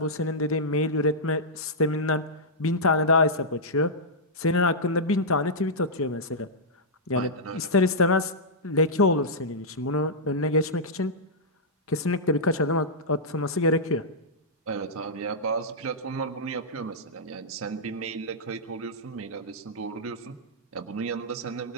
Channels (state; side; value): normal; both; correlation -0.10